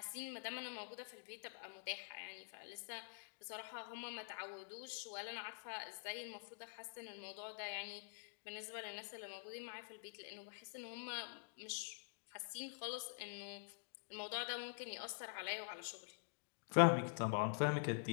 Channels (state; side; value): silent; right; digital silence